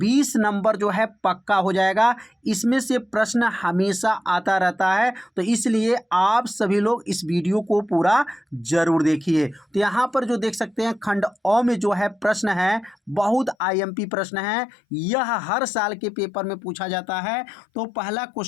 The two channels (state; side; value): drops out; right; at 13.6 s